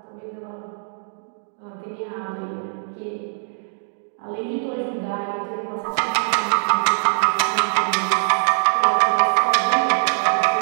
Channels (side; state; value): left; silent; digital silence